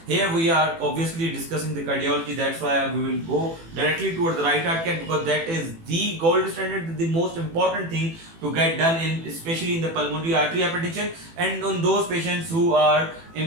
Here we are obviously discussing the cardiology, that's why we will go directly towards the right heart cath, because that is the gold standard, the most important thing to get done in, especially in the pulmonary artery hypertension, and on those patients who are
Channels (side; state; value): left; late; 18 ms